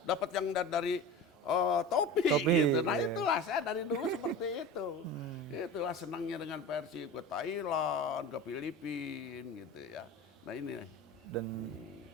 dapat yang dari topi gitu. Nah iya. itulah saya dari dulu seperti itu. Itulah senangnya dengan Persib, ke Thailand, ke Filipina gitu ya. Nah ini. Dan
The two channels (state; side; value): normal; both; correlation 0.32